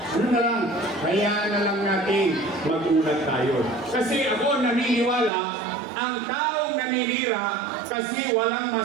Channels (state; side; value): drops out; left; at 5.3 s